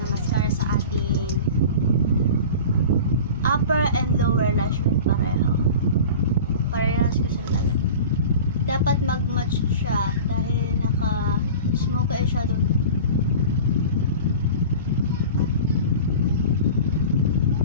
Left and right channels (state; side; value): inverted; both; correlation -0.36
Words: mascara sa ating upper and lower lash line pareho. Parehas ko sa lalagay. Dapat mag-match siya dahil naka-smoky eyeshadow.